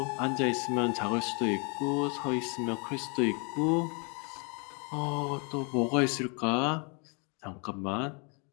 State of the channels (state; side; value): quieter; right; 35.2 dB